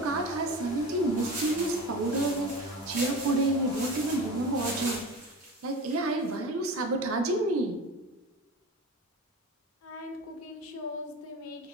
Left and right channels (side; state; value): both; normal; correlation 0.32